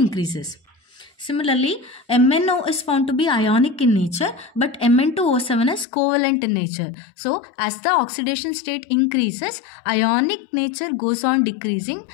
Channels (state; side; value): drops out; right; at 5.9 s